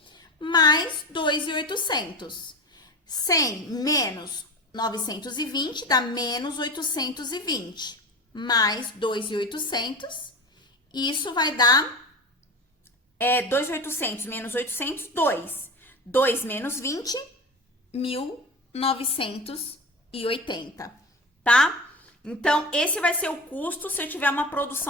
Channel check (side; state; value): both; normal; correlation 0.29